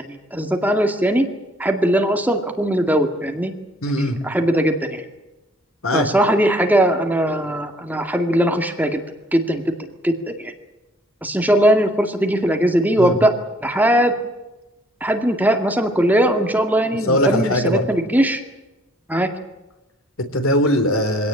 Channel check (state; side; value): normal; both; correlation 0.61